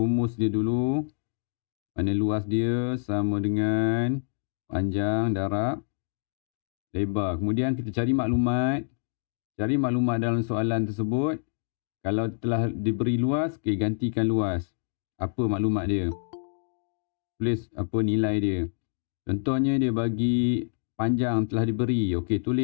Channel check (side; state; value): right; silent; digital silence